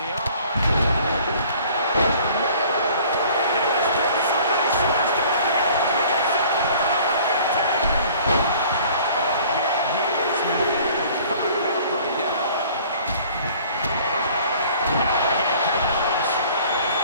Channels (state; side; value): inverted; both; correlation -0.52